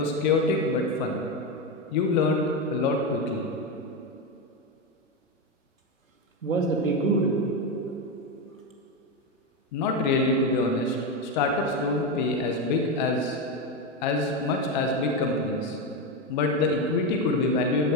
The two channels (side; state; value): both; normal; correlation 0.13